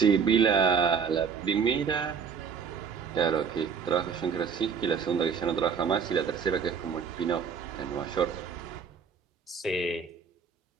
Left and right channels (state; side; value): quieter; left; 6.4 dB